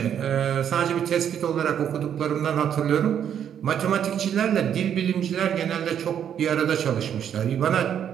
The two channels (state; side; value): quieter; left; 9.1 dB